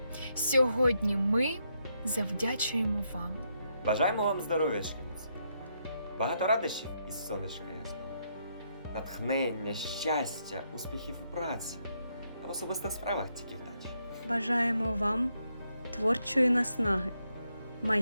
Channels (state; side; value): inverted; both; correlation -0.78